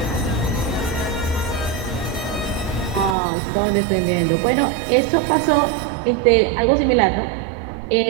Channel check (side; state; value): left; drops out; at 3.2 s